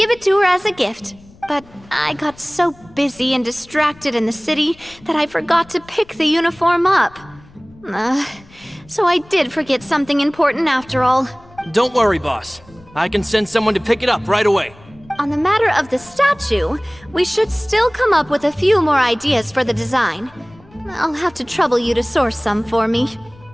it to her as a gift. But I got so busy and distracted in the city that I forgot to pick the uniform up. So I did forget something important after all. Don't worry, boss. I can send someone to pick it up right away. On the matter of the statue, we should still come up with a few more ideas for the design. I'll have to trouble you to source some for me.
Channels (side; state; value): left; noise; rumble, 25 dB below the sound